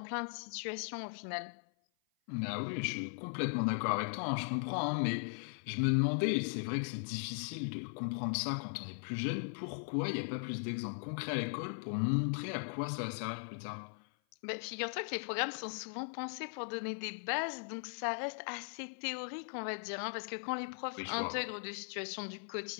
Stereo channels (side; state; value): right; silent; 52 dB below the other